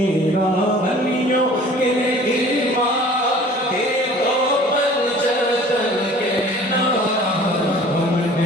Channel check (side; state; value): both; normal; correlation 0.48